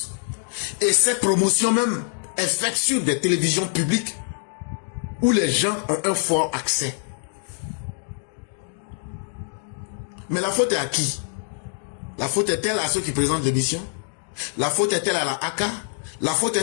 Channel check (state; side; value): silent; right; 61 dB below the other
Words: Et cette promotion même est faite sur des télévisions publiques où les gens ont un fort accès. Mais la faute est à qui? La faute est-elle à ceux qui présentent l'émission? La faute est-elle à la ACA? La faute